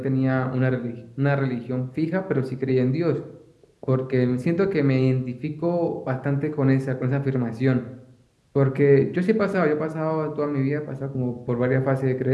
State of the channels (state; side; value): identical; both; correlation 1.00